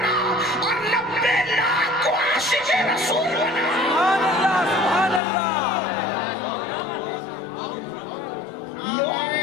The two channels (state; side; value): drops out; right; at 5.2 s